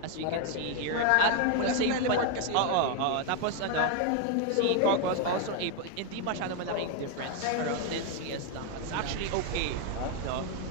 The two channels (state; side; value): different; both; correlation 0.01